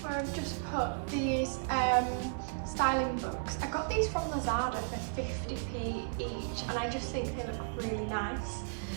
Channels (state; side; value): silent; left; 55 dB below the other